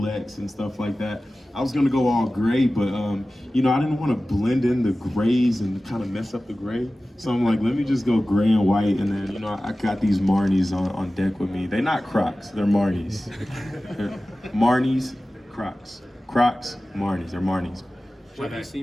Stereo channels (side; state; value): both; normal; correlation 0.96